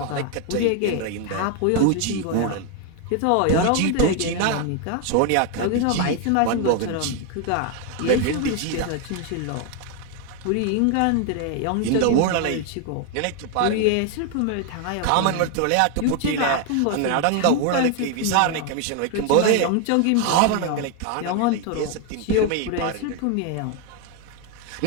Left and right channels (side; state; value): both; different; correlation 0.01